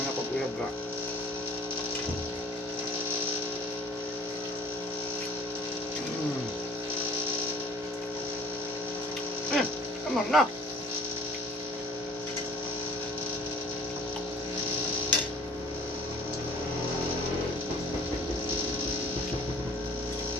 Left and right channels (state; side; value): normal; both; correlation 0.50